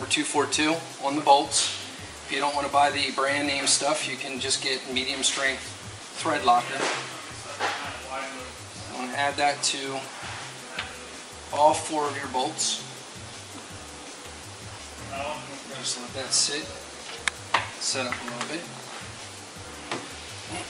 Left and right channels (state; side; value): identical; both; correlation 1.00